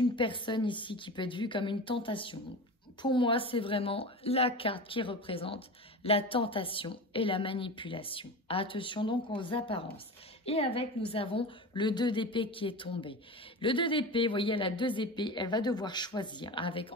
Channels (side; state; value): both; normal; correlation 0.29